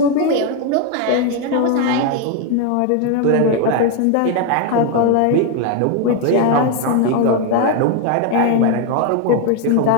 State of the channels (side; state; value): both; different; correlation 0.01